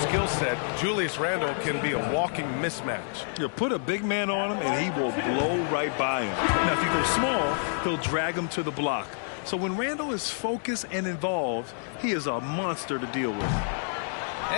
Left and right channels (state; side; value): silent; right; digital silence